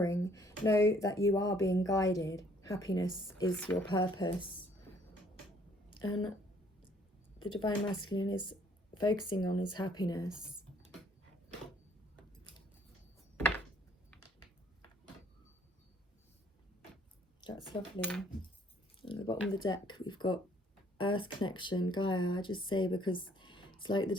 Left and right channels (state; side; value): normal; both; correlation 0.61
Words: Know that you are being guided. Happiness is your purpose. And the Divine Masculine is focusing on his happiness. That's lovely. At the bottom of the deck, we've got Earth Connection, Gaia. I just say because it's like the